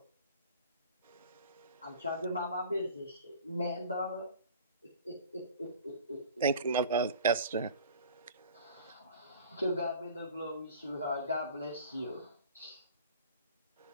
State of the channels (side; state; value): both; inverted; correlation -0.43